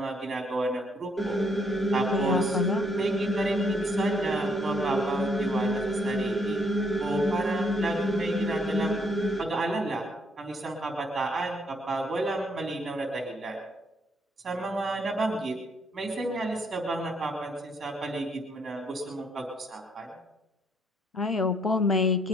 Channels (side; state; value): both; normal; correlation 0.70